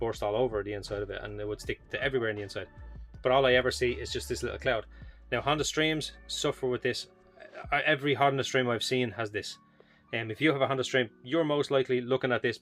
all over the inside of it, and it would stick to everywhere in the inside. But all I ever see is just this little cloud. Now Honda Streams suffer with this. Every Honda Stream I've seen has this. If you have a Honda Stream, you're most likely looking at this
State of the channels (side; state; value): both; identical; correlation 1.00